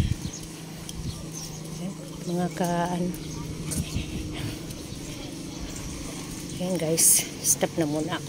Mga Ayan guys, stop na muna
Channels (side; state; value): both; identical; correlation 1.00